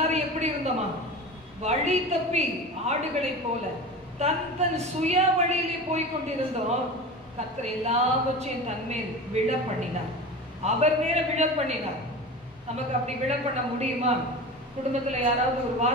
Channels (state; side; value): normal; both; correlation 0.31